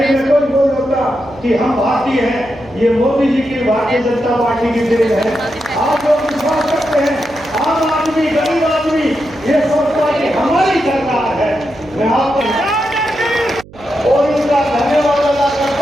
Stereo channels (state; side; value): noise; right; hum, 21 dB below the sound